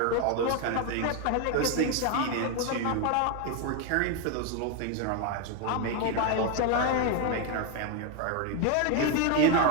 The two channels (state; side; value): different; both; correlation 0.01